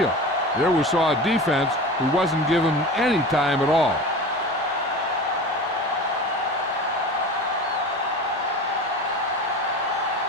There we saw a defense who wasn't given any time at all.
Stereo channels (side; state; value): both; normal; correlation 0.32